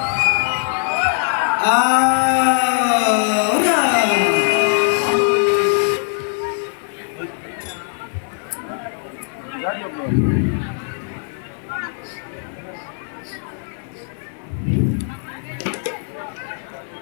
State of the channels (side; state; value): right; silent; 65 dB below the other